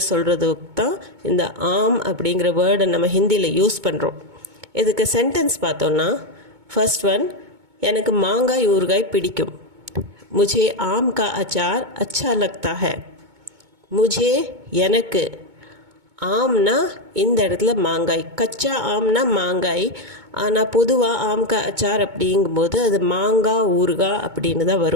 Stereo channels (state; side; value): late; left; 2.2 ms